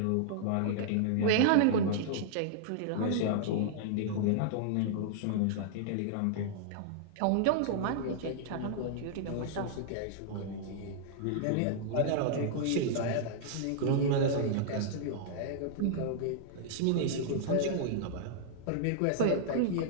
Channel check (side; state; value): both; different; correlation -0.01